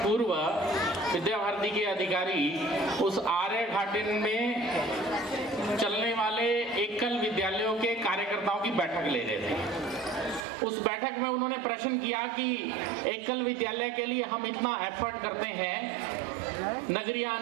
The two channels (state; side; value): drops out; left; at 10.5 s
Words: विद्या भारती के अधिकारी उस आर्य घाटी में चलने वाले एकल विद्यालयों के कार्यकर्ताओं की बैठक ले रहे थे। उस बैठक में उन्होंने प्रश्न किया कि एकल विद्यालय के लिए हम इतना एफर्ट करते हैं, नगरीय